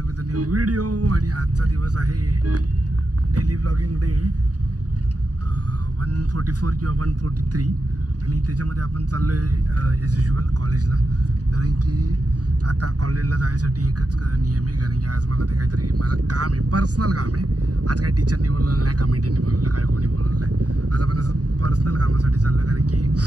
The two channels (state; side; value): late; left; 0.68 ms